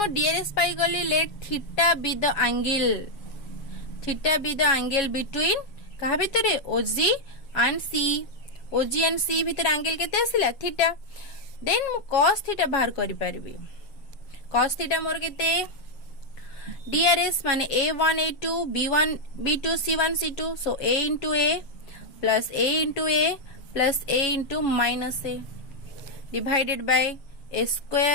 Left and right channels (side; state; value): right; late; 7.3 ms